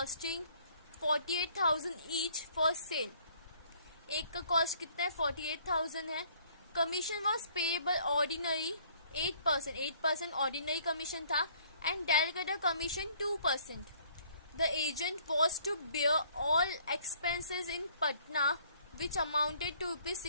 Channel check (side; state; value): both; inverted; correlation -0.60